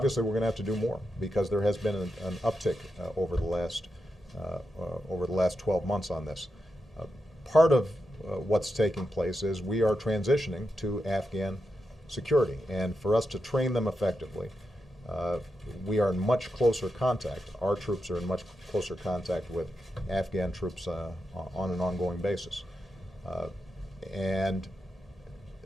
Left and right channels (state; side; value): normal; both; correlation 0.87